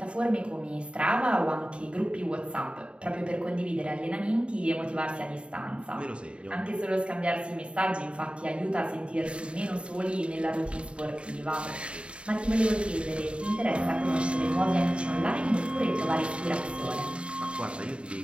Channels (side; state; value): left; late; 0.057 ms